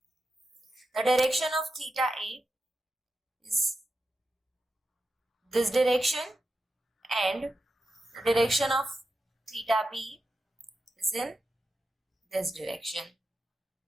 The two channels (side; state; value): both; normal; correlation 0.89